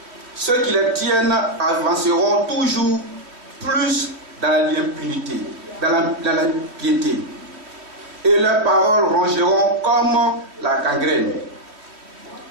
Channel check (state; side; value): late; left; 3.1 ms